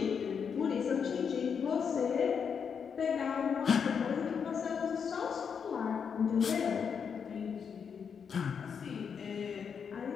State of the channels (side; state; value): right; quieter; 6.7 dB